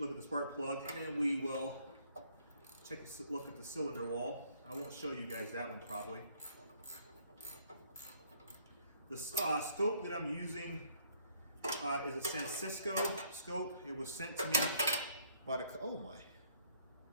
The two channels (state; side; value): inverted; both; correlation -0.64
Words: at the spark plug, and then we will take a look at the cylinder wall. I won't show you guys that one probably. The scope that I'm using is a San Francisco scope. It was sent to me by the, oh my.